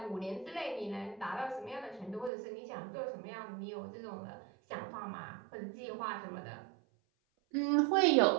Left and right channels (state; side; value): drops out; left; at 2.3 s